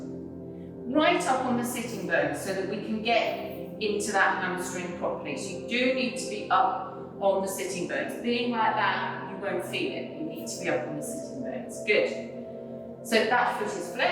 right up on the sitting bone so that we can get into that hamstring properly. So you do need to be up on the sitting bones. Being like that, you won't feel it. You need to be up on the sitting bones. Good. So that foot is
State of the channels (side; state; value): both; identical; correlation 1.00